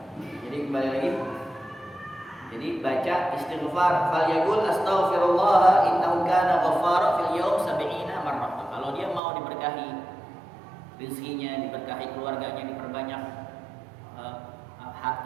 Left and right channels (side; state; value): left; drops out; at 9.2 s